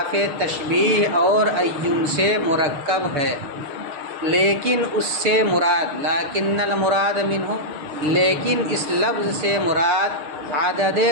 تشبیہ اور عین سے مرکب ہے، لیکن اس سے مراد لیکن المراد منہ، لیکن اس لفظ سے مراد عدد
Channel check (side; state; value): left; late; 6.5 ms